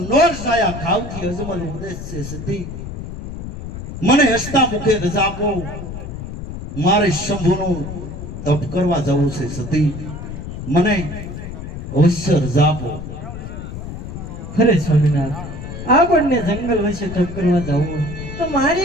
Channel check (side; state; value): left; noise; rumble, 9 dB below the sound